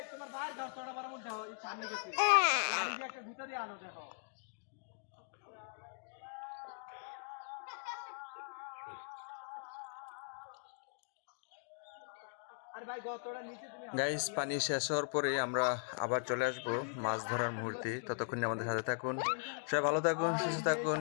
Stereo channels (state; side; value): silent; right; digital silence